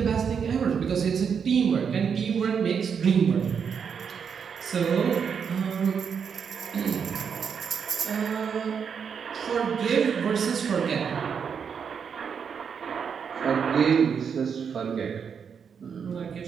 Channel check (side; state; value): left; quieter; 6.8 dB